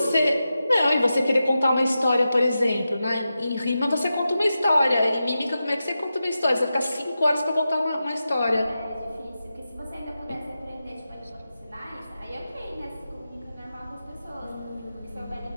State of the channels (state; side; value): inverted; both; correlation -0.91